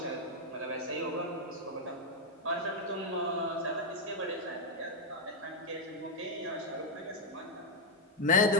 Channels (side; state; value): both; normal; correlation 0.00